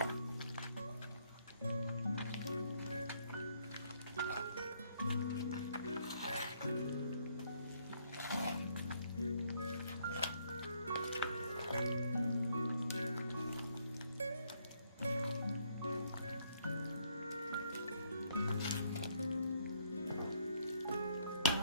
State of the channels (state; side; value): inverted; both; correlation -0.69